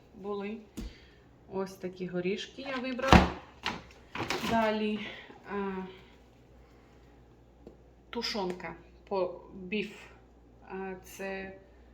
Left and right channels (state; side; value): identical; both; correlation 1.00